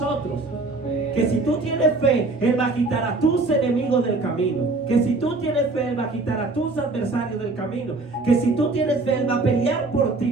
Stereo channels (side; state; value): left; quieter; 3.4 dB